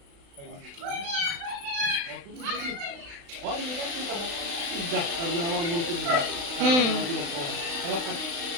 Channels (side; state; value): left; late; 35 ms